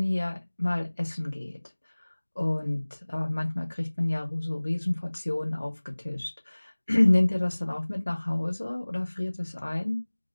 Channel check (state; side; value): inverted; both; correlation -1.00